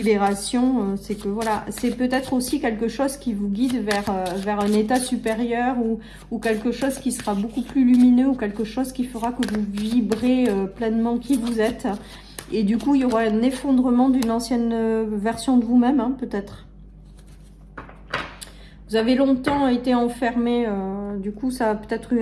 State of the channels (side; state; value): both; identical; correlation 1.00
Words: c'est que voilà, c'est peut-être aussi quelque chose qui vous guide vers un état supérieur ou quelque chose qui sera beaucoup plus lumineux ou quelque chose qui fera que vous vibrez pleinement qui vous êtes. Et du coup, il y aura un effondrement d'une ancienne version de vous-même, hein, peut-être. Vous avez longtemps été enfermé, du coup, ça a peut-être